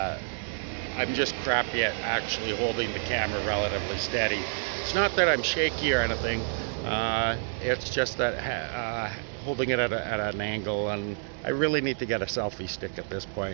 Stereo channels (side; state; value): left; silent; digital silence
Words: I'm just crappy at actually holding the camera relatively steady. It's not that I'm shaky or anything, it's just that holding it at an angle, and I really need to get a selfie stick at this